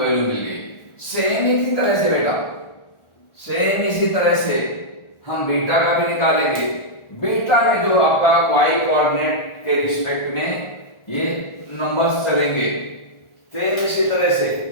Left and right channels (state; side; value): late; right; 1.4 ms